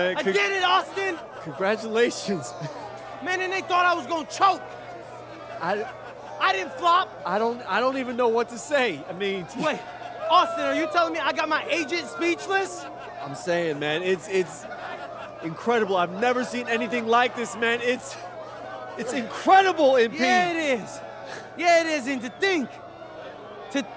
I did it, Austin. Congratulations. Man, and they thought I was gonna choke. I didn't flop. I don't even know what to say. I mean, wait, Austin, are you telling me I got my agent speechless? I'm saying, man, it's incredible. I've never seen anything like this, man. It's incredible, MP. Yeah, it is. Yeah, it is. And to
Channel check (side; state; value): both; identical; correlation 1.00